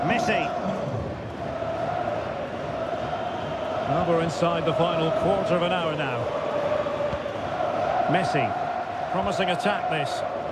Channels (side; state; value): both; identical; correlation 1.00